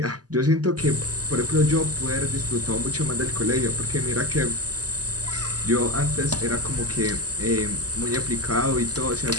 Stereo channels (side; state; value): left; late; 0.67 ms